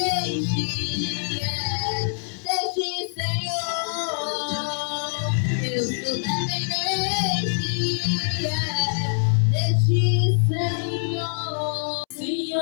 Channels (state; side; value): silent; right; 62 dB below the other